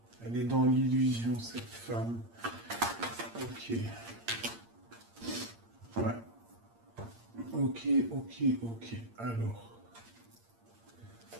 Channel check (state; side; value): late; left; 8.7 ms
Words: Elle est dans l'illusion, cette femme. Ok. Ouais. Ok. Alors.